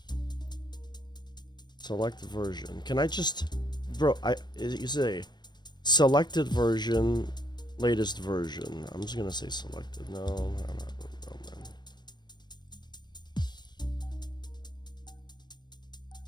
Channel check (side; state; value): right; late; 0.21 ms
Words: Select version. Can I just... Bro, you say selected version, latest version. I'm just gonna say selected. No, I'm not.